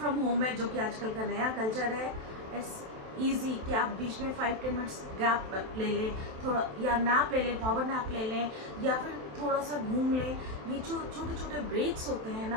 होम है, जो कि आजकल का नया कल्चर है, इट्स ईजी कि आप बीच में 5-10 मिनट्स गैप ले लें, थोड़ा या नैप ले लें, पावर नैप ले लें, या फिर थोड़ा सा घूम लें। ये जो छोटे छोटे ब्रेक्स होते हैं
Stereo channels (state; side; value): late; left; 27 ms